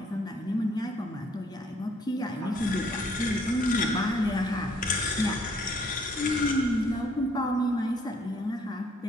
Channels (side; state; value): both; normal; correlation 0.64